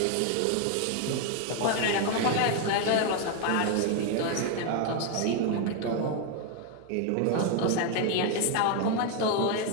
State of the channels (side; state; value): both; different; correlation 0.01